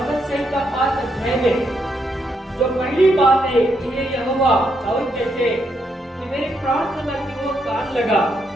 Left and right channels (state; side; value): normal; both; correlation 0.78